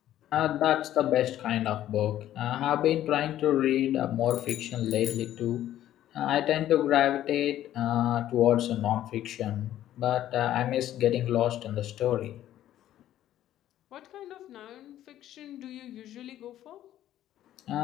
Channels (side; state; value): right; quieter; 12.5 dB